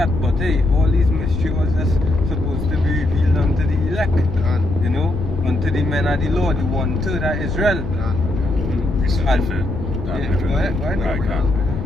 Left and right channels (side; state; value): left; noise; rumble, 7 dB below the sound